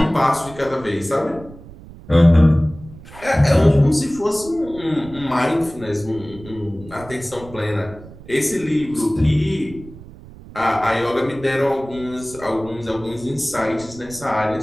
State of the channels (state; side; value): noise; right; rumble, 18 dB below the sound